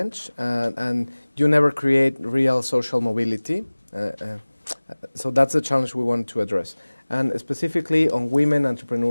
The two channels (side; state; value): both; inverted; correlation -1.00